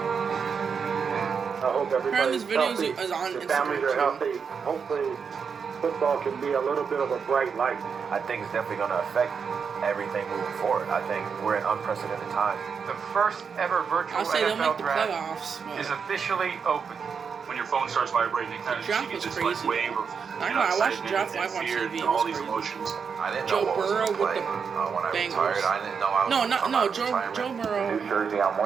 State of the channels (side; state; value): left; quieter; 6.2 dB